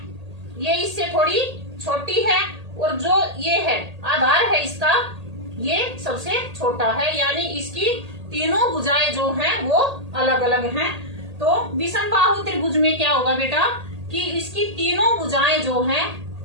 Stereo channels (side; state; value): left; late; 1.8 ms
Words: ये इससे थोड़ी छोटी है, और जो ये है आधार है इसका, ये सबसे छोटा है। यानी इसकी तीनों भुजाएं जो हैं वो अलग अलग हैं। तो विषमबाहु त्रिभुज में क्या होगा बेटा कि इसकी तीनों भुजाएं जो हैं